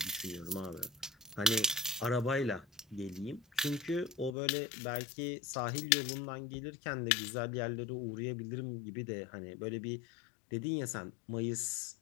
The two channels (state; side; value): drops out; right; at 4.4 s